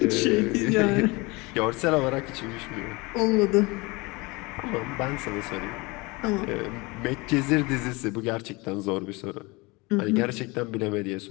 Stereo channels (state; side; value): quieter; right; 25.1 dB